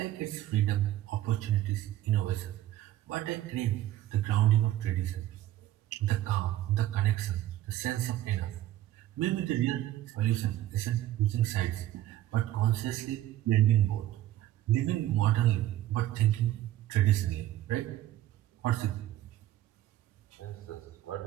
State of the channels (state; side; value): quieter; left; 13.9 dB